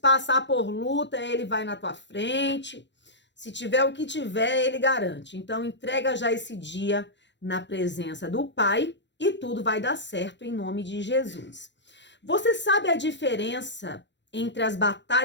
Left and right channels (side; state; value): right; late; 0.52 ms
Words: por luta, ele vai na tua frente. Se tiver o que tiver, ele garante. Então entrega já esse dia na presença do Pai e tudo vai dar certo em nome de Jesus. Você sabe a diferença entre as